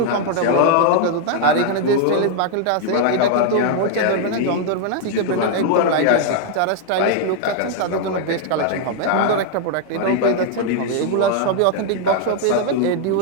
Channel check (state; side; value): different; both; correlation 0.00